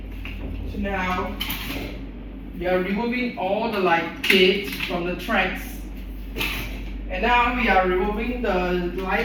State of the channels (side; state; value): both; identical; correlation 1.00